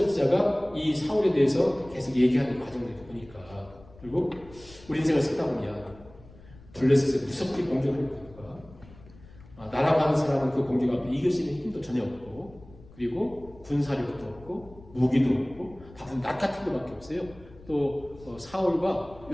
이 사울에 대해서 계속 얘기하는 과정을 보니까 그리고 우리 인생을 살다 보면 블레셋에 무섭게 공격을 하니까 날아가는 사람은 그 공격 앞에 이길 수 있는 힘도 전혀 없고 그리고 군사력도 없고 무기도 없고 다 낫 같은 것밖에 없어요. 또 사울과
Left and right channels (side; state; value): left; noise; rumble, 22 dB below the sound